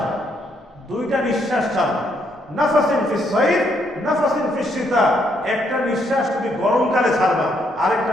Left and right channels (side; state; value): both; normal; correlation 0.73